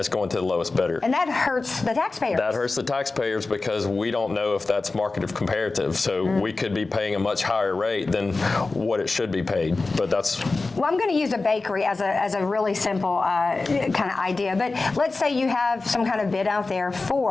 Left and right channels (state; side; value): quieter; right; 3.6 dB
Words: going to the lowest bidder. And that hurts the taxpayers. That hurts the taxpayers because we don't know if that's market comparative. So we could be paying a much higher rate than what it should be paid. But that's... Well, I'm going to use a bakery as a really simple kind of idea. But let's say you have some kind of bid out there